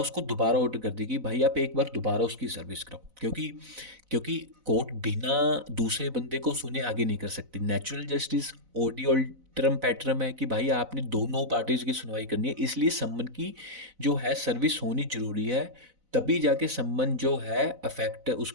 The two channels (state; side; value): late; left; 4.0 ms